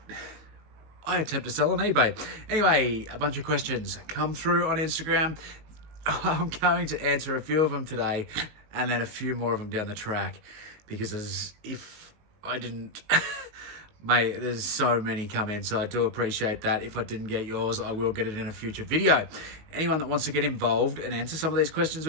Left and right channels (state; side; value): late; left; 19 ms